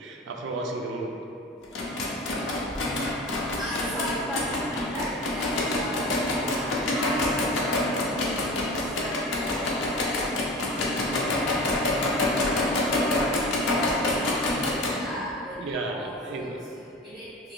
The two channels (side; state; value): both; normal; correlation 0.33